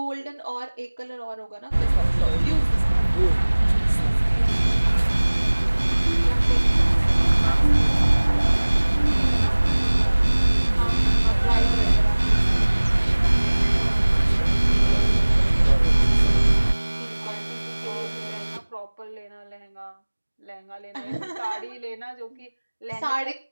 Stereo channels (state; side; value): inverted; both; correlation -1.00